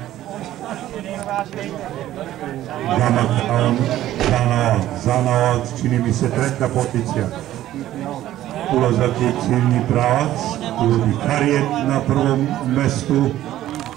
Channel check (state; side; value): quieter; left; 13.5 dB